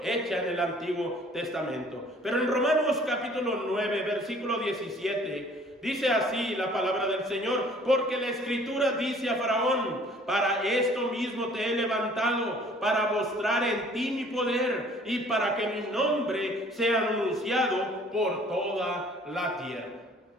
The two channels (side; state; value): both; normal; correlation 0.54